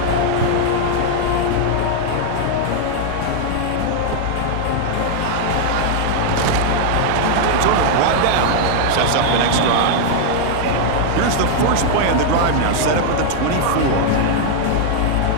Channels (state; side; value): different; both; correlation 0.00